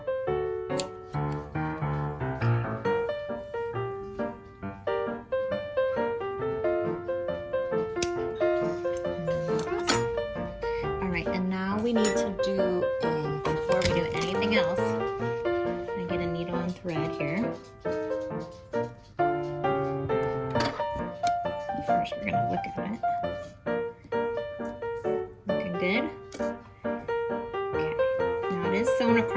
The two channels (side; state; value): both; identical; correlation 1.00